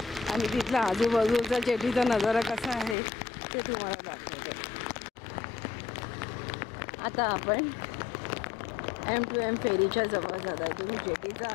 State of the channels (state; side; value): drops out; right; at 3.0 s